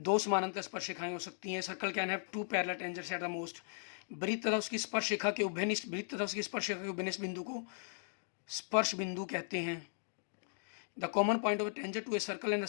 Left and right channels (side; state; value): right; silent; digital silence